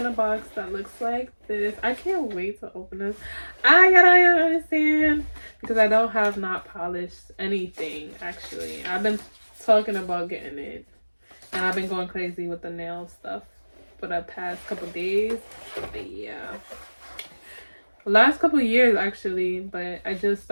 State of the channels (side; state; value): both; inverted; correlation -1.00